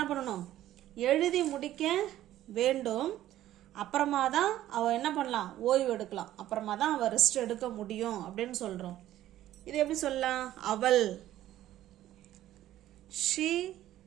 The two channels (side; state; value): left; quieter; 13.4 dB